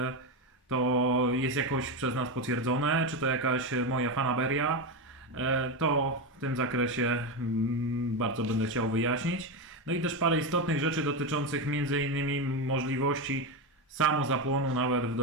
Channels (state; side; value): normal; both; correlation 0.13